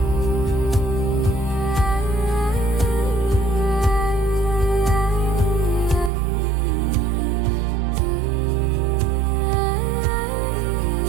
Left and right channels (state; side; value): drops out; left; at 6.1 s